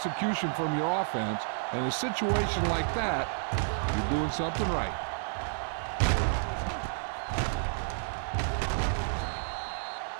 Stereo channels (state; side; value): silent; left; 57 dB below the other